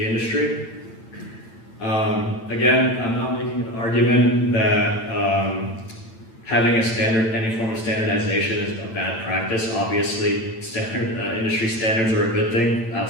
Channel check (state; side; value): late; right; 8.9 ms